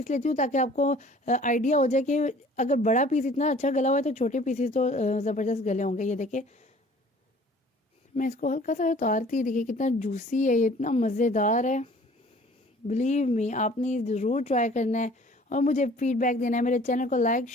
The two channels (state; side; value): normal; both; correlation 0.51